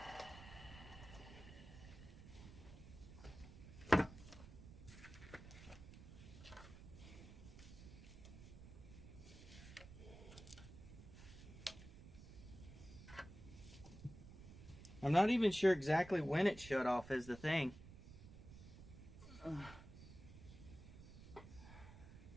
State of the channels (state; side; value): noise; right; rumble, 15 dB below the sound